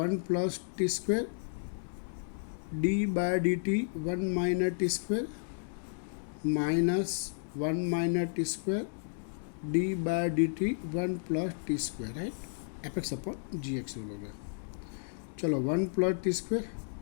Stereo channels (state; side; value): silent; right; digital silence